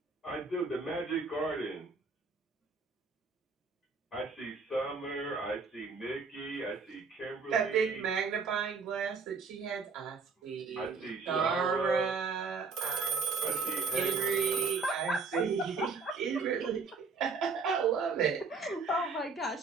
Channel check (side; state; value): left; quieter; 4.6 dB